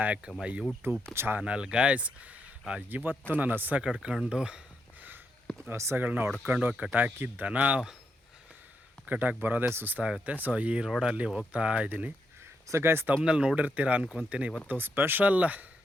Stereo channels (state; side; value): normal; both; correlation 0.81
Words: my YouTube channel guys. ಇವತ್ತು ನಾನು ಹಸಗಳನ್ನ ಹೊಡ್ಕೊಂಡು ಕಟಾಕಿ ದನ ಕಟಾಕಿ ಬರೋದೇ ಸುಸ್ತಾಗುತ್ತೆ. ಸೊ ಈ ರೋಡಲ್ಲಿ ಹೋಗ್ತಾ ಇದ್ದೀನಿ. ಸೊ ಗಾಯ್ಸ್, ತಮ್ಮನಲ್ಲಿ ನೋಡಿರ್ತೀರ ಅನ್ಕೊತೀನಿ. ಇವತ್ತು ಸ್ಪೆಷಲ್